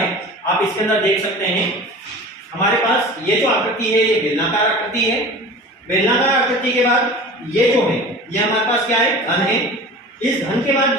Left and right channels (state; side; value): normal; both; correlation 0.38